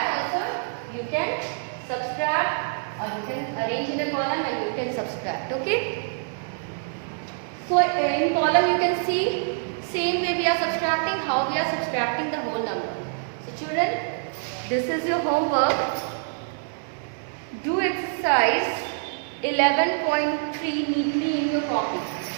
also you can subtract, or you can arrange in a column and you can subtract. Okay? So in column you can see same way we are subtracting, how we are subtracting the whole number. So children, this is your homework. Do exercise 11.3 neatly in your copy.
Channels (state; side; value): silent; left; digital silence